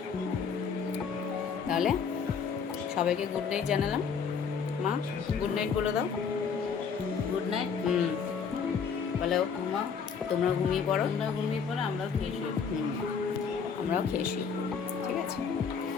তাহলে। সবাইকে গুড নাইট জানালাম। মা গুড নাইট বলে দাও। Good night. বলো মা, তোমরা ঘুমিয়ে পড়ো। আমরা ঘুমিয়ে পড়ো, আমরাও খেয়ে শুই। আমরাও খেয়ে শুই। ঠিক আছে,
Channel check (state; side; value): quieter; right; 6.2 dB